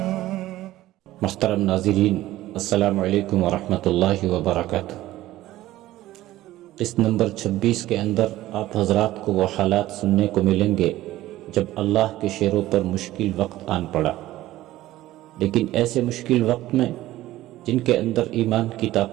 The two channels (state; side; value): quieter; left; 15.6 dB